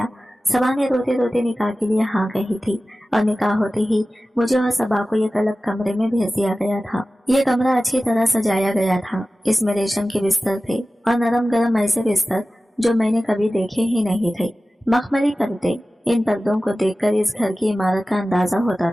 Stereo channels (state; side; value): normal; both; correlation 0.96